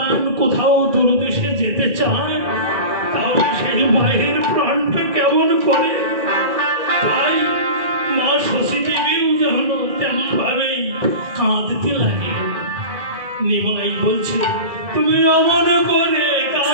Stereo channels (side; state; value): left; late; 1.9 ms